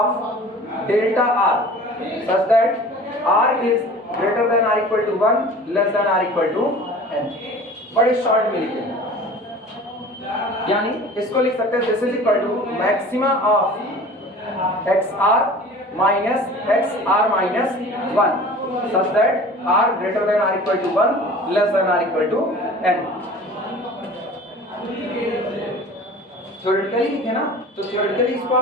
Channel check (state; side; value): normal; both; correlation 0.42